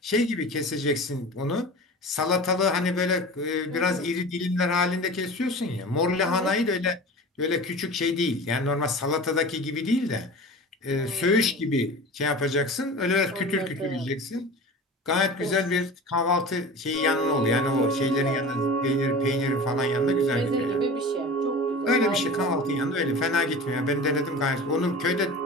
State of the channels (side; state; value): both; normal; correlation 0.35